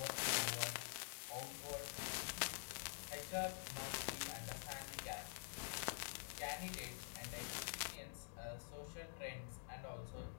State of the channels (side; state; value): right; silent; digital silence